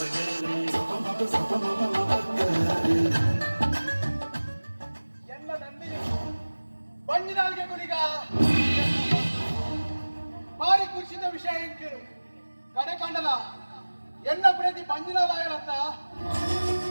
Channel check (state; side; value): inverted; both; correlation -1.00